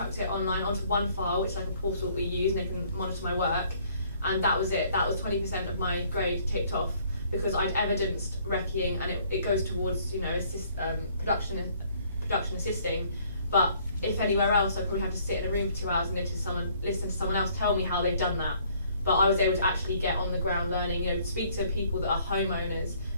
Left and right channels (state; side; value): inverted; both; correlation -0.62